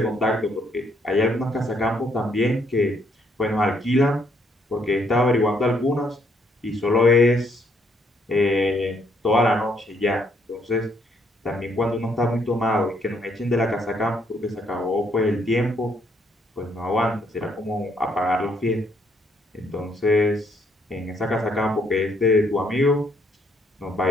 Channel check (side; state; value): both; normal; correlation 0.70